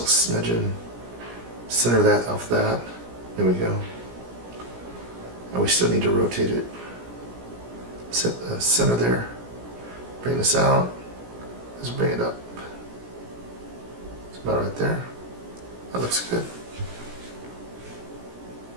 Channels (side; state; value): left; late; 17 ms